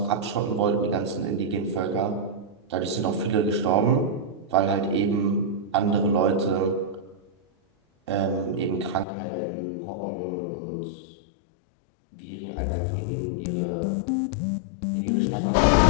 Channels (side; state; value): right; drops out; at 9.1 s